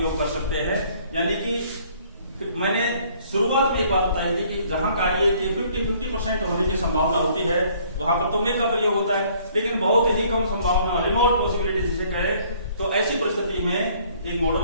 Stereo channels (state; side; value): inverted; both; correlation -0.60